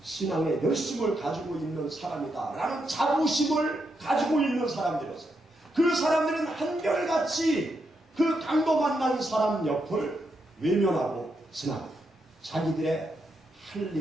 신앙의 열심을 가지고 있는 사람이다. 라는 자부심을 가지고 있는 사람들이었어요. 그 사람들은 한결같이 그 강도 만난 사람 옆을 외면하고 지나가고 자기들의 할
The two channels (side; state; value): both; normal; correlation 0.82